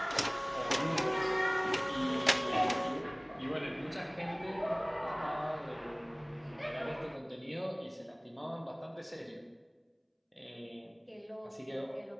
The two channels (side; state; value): both; identical; correlation 1.00